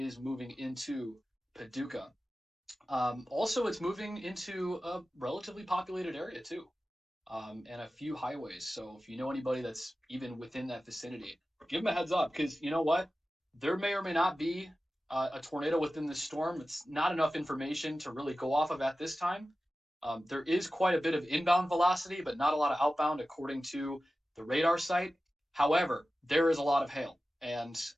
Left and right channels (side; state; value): both; normal; correlation 0.95